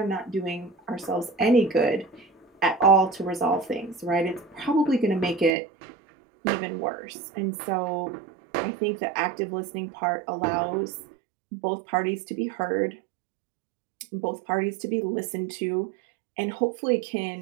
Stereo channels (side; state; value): left; drops out; at 5.6 s